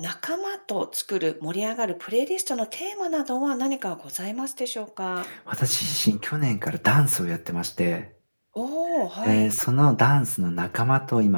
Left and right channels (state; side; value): inverted; both; correlation -1.00